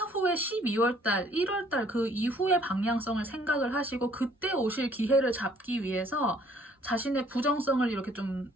12월 달, 1월 달 그 이후의 방향성을 생각을 하시고 그때 오실 기회를 잡기 위해서 자신의 부정성을 이렇게 좀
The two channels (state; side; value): normal; both; correlation 0.60